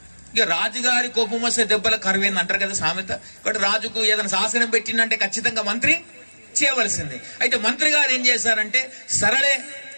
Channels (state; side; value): inverted; both; correlation -1.00